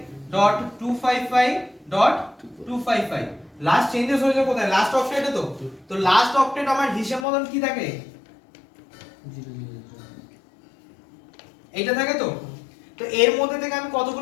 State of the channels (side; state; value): right; drops out; at 7.2 s